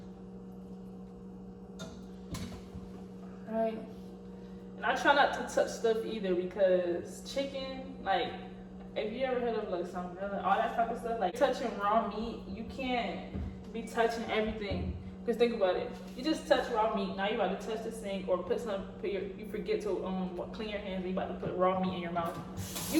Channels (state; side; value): identical; both; correlation 1.00